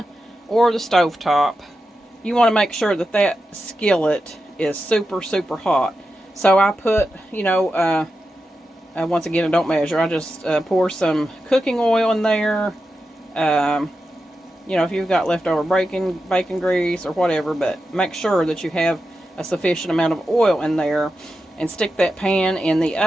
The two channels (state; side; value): normal; both; correlation 0.90